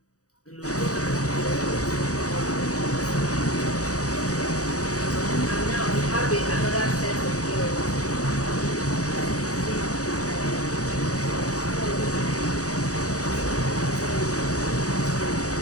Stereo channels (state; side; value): late; right; 0.66 ms